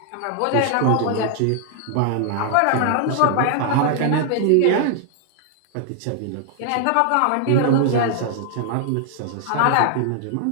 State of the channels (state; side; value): different; both; correlation 0.00